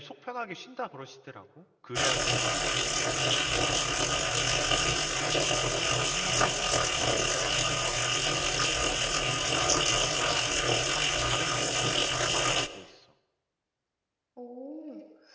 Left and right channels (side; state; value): both; identical; correlation 1.00